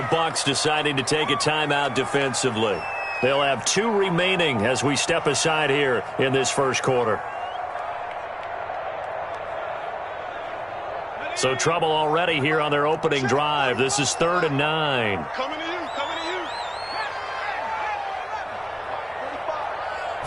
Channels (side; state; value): both; identical; correlation 1.00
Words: Bucs deciding to take a timeout defensively. They'll have 2 remaining as we step aside here in this first quarter. So trouble already here on their opening drive. This is 3rd and 9.